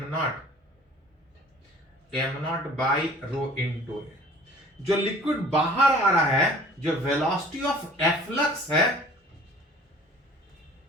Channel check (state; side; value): normal; both; correlation 0.49